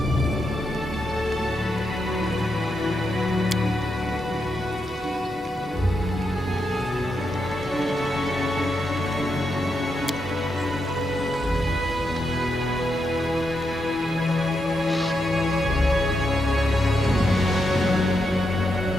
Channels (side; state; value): both; normal; correlation 0.83